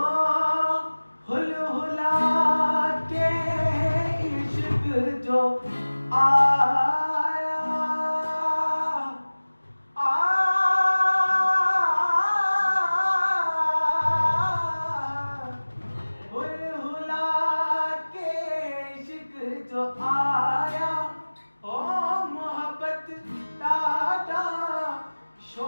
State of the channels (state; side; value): inverted; both; correlation -1.00